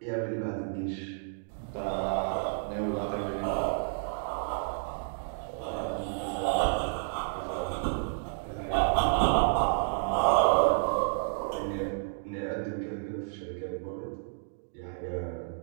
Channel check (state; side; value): silent; left; digital silence